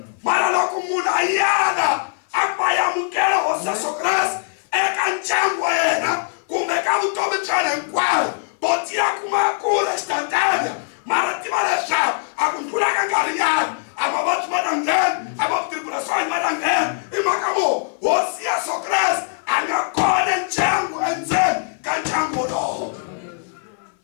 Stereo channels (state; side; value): silent; right; 56 dB below the other